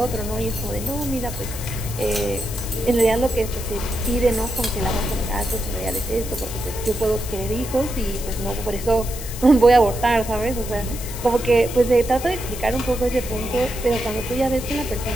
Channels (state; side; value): noise; left; hiss, 11 dB below the sound